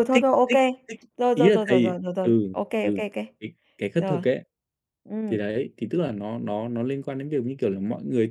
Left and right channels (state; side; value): identical; both; correlation 1.00